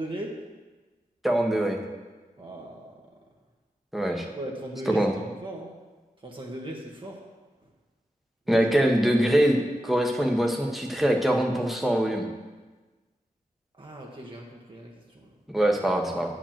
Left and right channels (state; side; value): normal; both; correlation 0.90